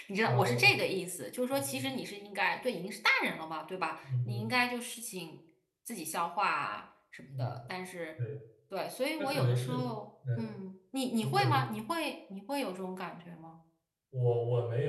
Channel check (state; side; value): identical; both; correlation 1.00